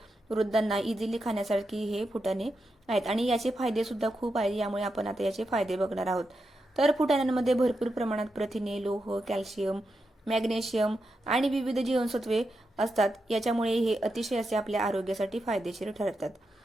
वृद्धांना इझिली खाण्यासारखी हे फुटाणे आहेत आणि याचे फायदे सुद्धा खूप आहेत। यामुळे आपण आता याचे फायदे बघणार आहोत। तर फुटाण्यांमध्ये भरपूर प्रमाणात प्रथिने, लोह, कॅल्शियम, मॅग्नेशियम आणि विविध जीवनसत्वे असतात। याच्यामुळे हे अतिशय असे आपल्या आरोग्यासाठी फायदेशीर ठरतात।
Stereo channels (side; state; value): both; normal; correlation 0.86